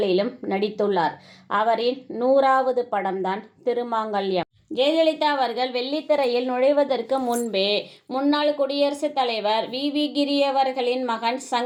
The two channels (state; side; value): identical; both; correlation 1.00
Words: நடித்துள்ளார். அவரின் 100வது படம்தான் திருமாங்கல்யம். ஜெயலலிதா அவர்கள் வெள்ளித்திரையில் நுழைவதற்கு முன்பே முன்னாள் குடியரசுத் தலைவர் வி. கிரி அவர்களின் மகன்